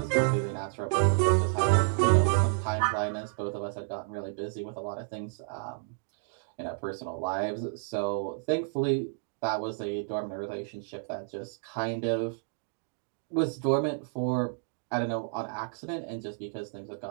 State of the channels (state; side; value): silent; left; digital silence